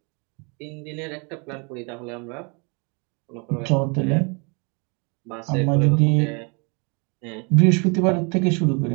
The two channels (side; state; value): left; quieter; 33.2 dB